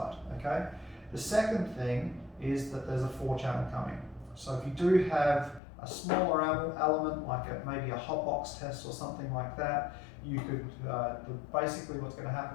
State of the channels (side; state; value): right; drops out; at 5.6 s